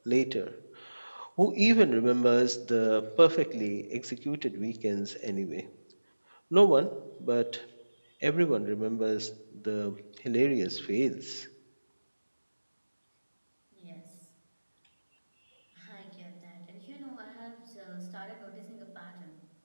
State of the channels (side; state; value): both; inverted; correlation -1.00